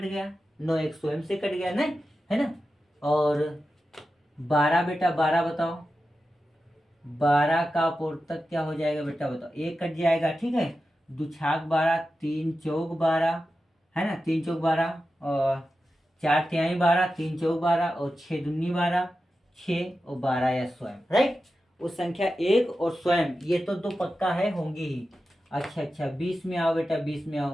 गया, 9 एक स्वयं से कट गया, नहीं है ना। और 12 बेटा, 12 बताओ। 12 का अपवर्तक क्या हो जाएगा बेटा? बताओ। 1 कट जाएगा, ठीक है। 2 छाक 12, 3 चौक 12, है ना। 3 चौक 12 और 4 तिहाई 12, 3 चौक 12 और 6 दूनी 12, 6 और 12 या स्वयं। राइट, उस संख्या 1 और स्वयं, ये तो 2 पक्का है, होंगी ही। अच्छा 20 में आओ बेटा, 20 में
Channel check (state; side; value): normal; both; correlation 0.92